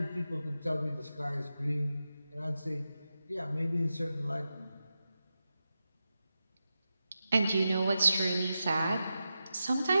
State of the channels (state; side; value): inverted; both; correlation -0.90